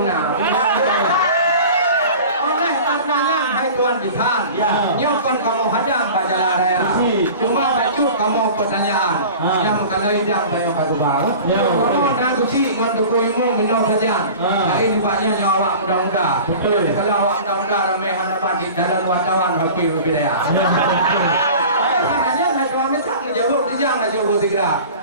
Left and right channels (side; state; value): both; inverted; correlation -0.39